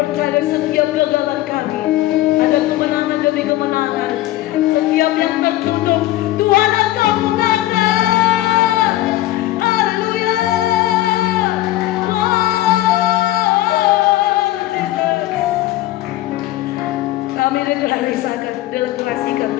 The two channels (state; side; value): quieter; right; 15.6 dB